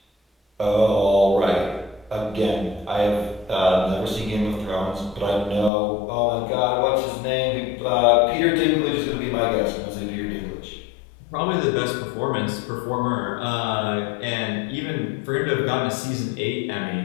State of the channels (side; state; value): right; drops out; at 5.7 s